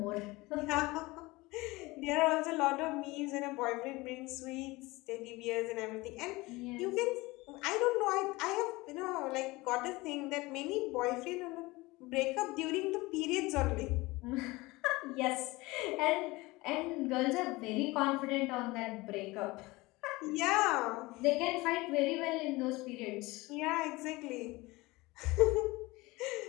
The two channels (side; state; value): right; quieter; 21.8 dB